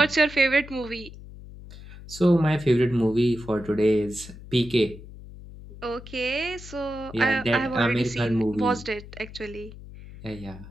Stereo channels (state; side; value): noise; left; hum, 16 dB below the sound